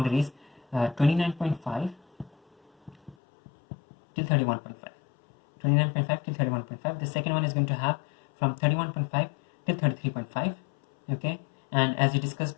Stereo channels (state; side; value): drops out; right; at 3.2 s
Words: 29.5 till 31.5. 29.5 till 31.5. The second one is going to have from 31.5 till 33.5. Okay, and as we discussed